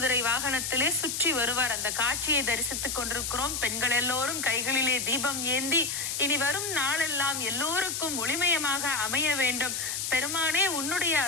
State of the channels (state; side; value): noise; left; hiss, 2 dB below the sound